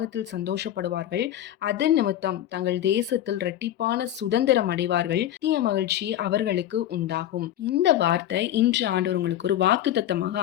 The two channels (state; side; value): quieter; right; 12.2 dB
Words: சந்தோஷப்படுவார்கள், அது நிமித்தம் தங்கள் தேசத்தில் இரட்டிப்பான சுதந்திரம் அடைவார்கள், நித்திய மகிழ்ச்சி அவர்களுக்கு உண்டாகும். இந்த வார்த்தை இன்று ஆண்டவர் உங்களுக்கு ஒரு வாக்குத்தத்தமாக